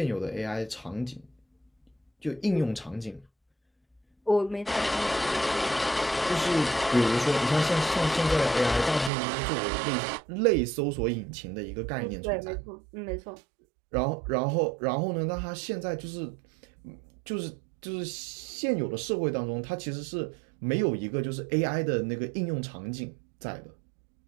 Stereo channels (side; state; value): left; drops out; at 9.1 s